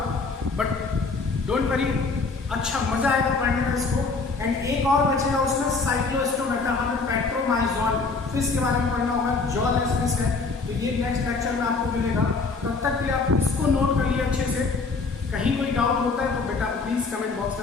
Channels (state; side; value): quieter; right; 4.2 dB